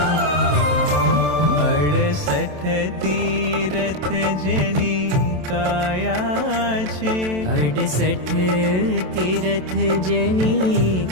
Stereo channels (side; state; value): left; late; 27 ms